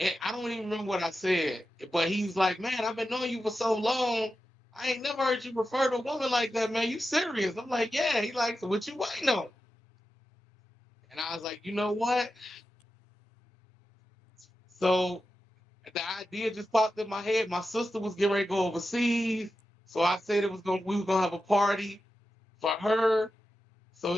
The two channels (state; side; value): normal; both; correlation 0.91